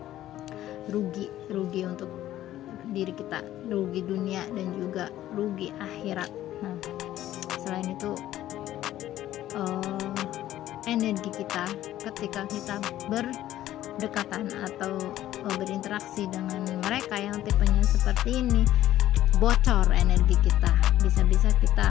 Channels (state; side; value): quieter; right; 13.4 dB